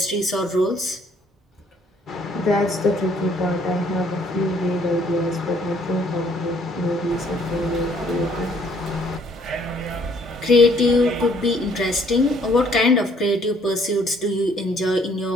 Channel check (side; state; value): both; normal; correlation 0.63